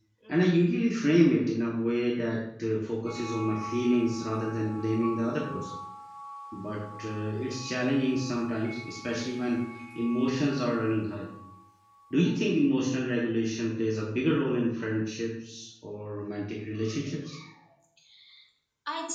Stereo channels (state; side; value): identical; both; correlation 1.00